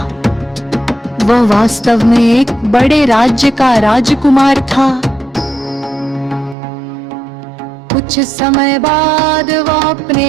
वह वास्तव में एक बड़े राज्य का राजकुमार था। कुछ समय बाद वह अपने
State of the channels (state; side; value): drops out; left; at 6.6 s